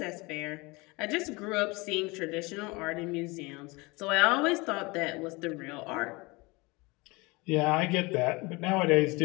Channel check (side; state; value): right; quieter; 24.9 dB